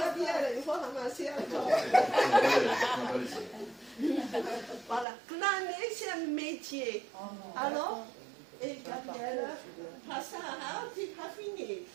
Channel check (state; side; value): drops out; left; at 5.1 s